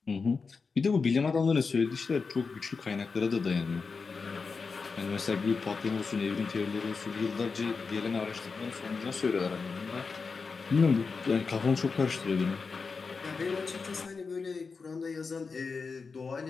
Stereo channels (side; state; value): right; quieter; 4.8 dB